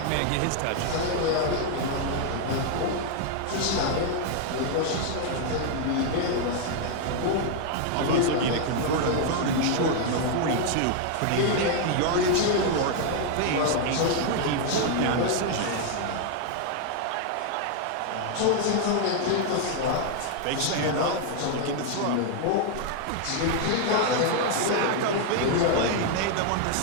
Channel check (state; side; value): different; both; correlation 0.00